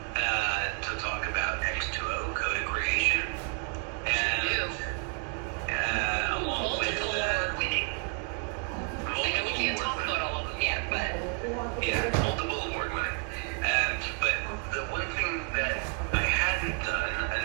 to talk about X2O, Code of Creation, and along with award-winning. I know we can't talk about all of them yet, but yeah, multiple award-winning. But the one thing that I hadn't done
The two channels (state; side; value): quieter; left; 35.3 dB